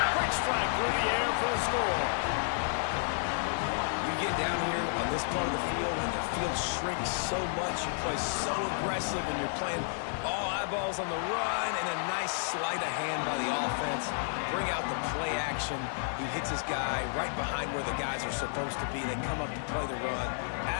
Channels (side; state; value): right; silent; digital silence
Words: Quick strike through the air for the score. You get down here on this part of the field, and the field shrinks so much. You play so aggressive, and you're playing all eyeballs on the run, and a nice sleight of hand by the offense. Bring out the play action. He hits his guy right behind where the guys are supposed to be. They come up to play the run,